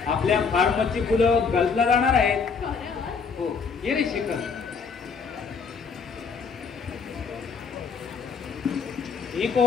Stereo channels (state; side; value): quieter; right; 5.5 dB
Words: आपल्या फार्मची फुलं गल्फला जाणार आहेत. हो, ये रे शेखर. ही